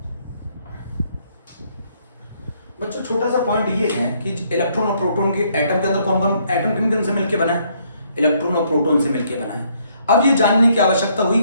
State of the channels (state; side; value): inverted; both; correlation -0.69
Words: बच्चों छोटा सा पॉइंट ये है कि इलेक्ट्रॉन और प्रोटॉन के एटम के अंदर कौन कौन एटम किन किन से मिलकर बना है? इलेक्ट्रॉन और प्रोटॉन से मिलकर बना है। अब ये जानने की आवश्यकता हुई